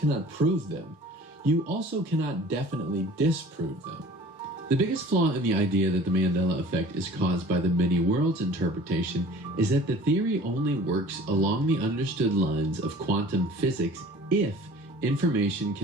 prove them, you also cannot definitely disprove them. The biggest flaw in the idea that the Mandela Effect is caused by the many worlds interpretation is that the theory only works along the understood lines of quantum physics if information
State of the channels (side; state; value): both; normal; correlation 0.46